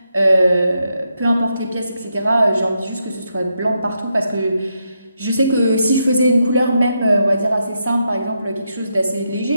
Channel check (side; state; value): both; inverted; correlation -0.82